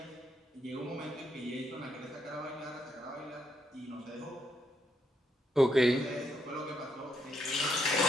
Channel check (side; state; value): both; normal; correlation 0.77